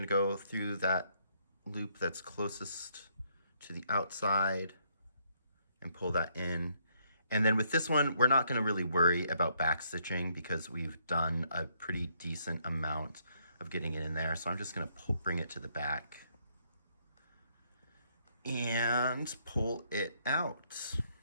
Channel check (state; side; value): inverted; both; correlation -0.71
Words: go through that loop that's closest to the outside and pull that in. And then with this one, we're not gonna really worry about back stitching because we've done a pretty decent amount of getting it in there. So I'm just gonna bring it to the back and pull it out.